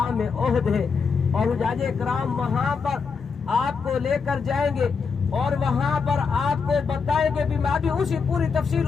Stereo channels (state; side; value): quieter; right; 5.4 dB